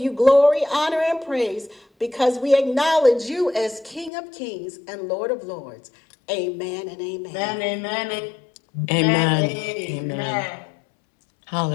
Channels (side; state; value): right; drops out; at 4.1 s